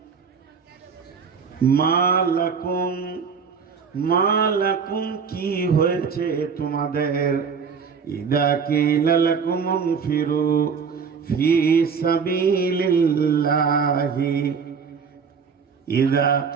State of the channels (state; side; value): quieter; left; 6.0 dB